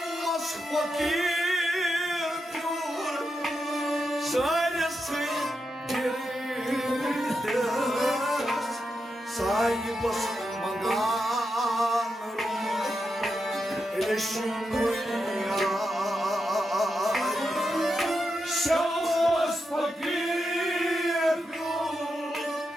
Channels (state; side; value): normal; both; correlation 0.86